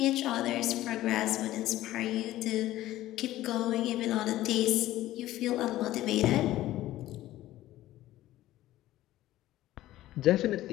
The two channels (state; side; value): quieter; right; 15.1 dB